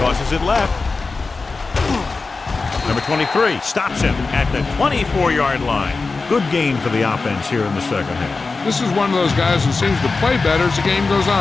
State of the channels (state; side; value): quieter; right; 4.0 dB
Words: Tosses it left. Number 23 stops him at the 24-yard line. Good gain for the offense here in the second half. This is one of those guys who seems to play better as the game goes